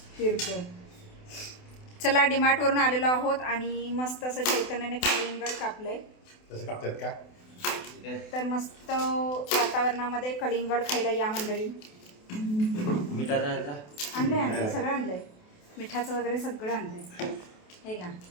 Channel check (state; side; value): late; right; 28 ms